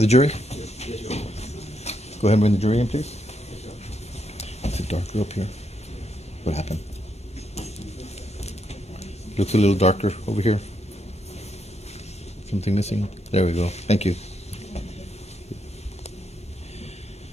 jury? Go ahead and bring the jury in, please. It's a darker up here. What happened? Looks a little darker over here. Something missing? There we go. Thank you.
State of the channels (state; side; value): normal; both; correlation 0.78